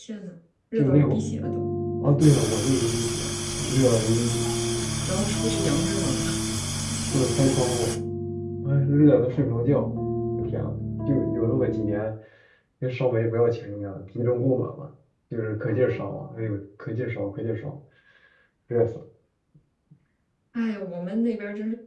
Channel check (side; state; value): both; identical; correlation 1.00